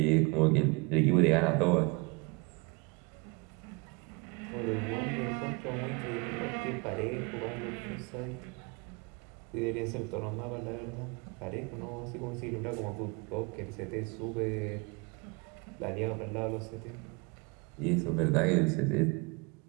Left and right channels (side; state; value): left; quieter; 29.1 dB